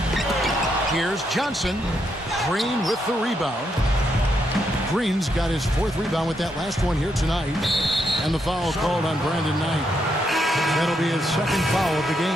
Here's Johnson. Green with the rebound. Green's got his 4th rebound with that last one here tonight. And the foul called on Brandon Knight. That'll be his 2nd foul of the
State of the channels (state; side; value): normal; both; correlation 0.79